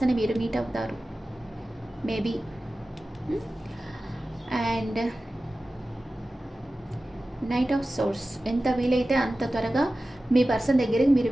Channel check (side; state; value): both; normal; correlation 0.95